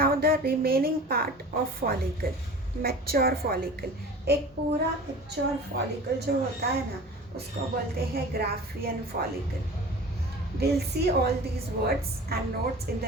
the remaining part of follicle, mature follicle, एक पूरा mature follicle जो होता है ना, उसको बोलते हैं Graafian follicle. We'll see all these words and notes in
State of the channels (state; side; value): normal; both; correlation 0.39